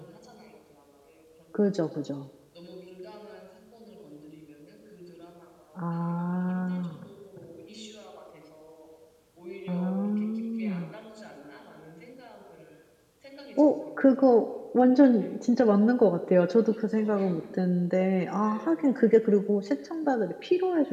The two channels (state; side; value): identical; both; correlation 1.00